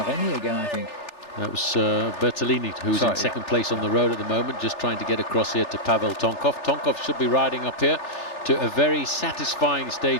again, I think. That was Bertolini, who's in second place on the road at the moment, just trying to get across here to Pavel Tonkov. Tonkov should be riding up here to a very satisfying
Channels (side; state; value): right; late; 3.4 ms